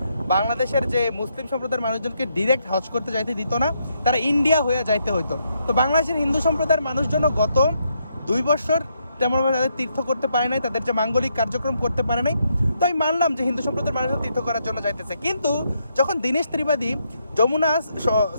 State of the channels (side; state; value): both; inverted; correlation -0.77